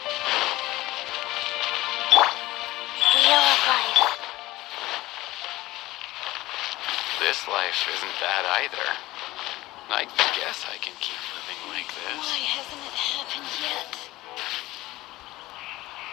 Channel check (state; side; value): quieter; right; 18.0 dB